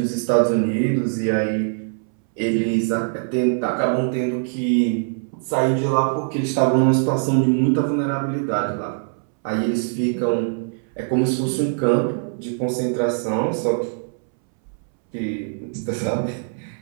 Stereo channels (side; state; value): left; silent; 64 dB below the other